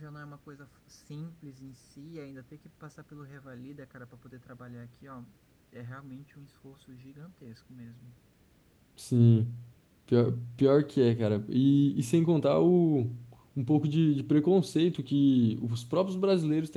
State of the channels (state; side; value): identical; both; correlation 1.00